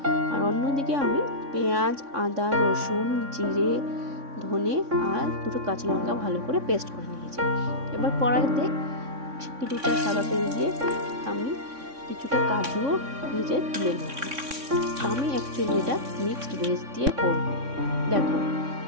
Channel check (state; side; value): late; left; 3.6 ms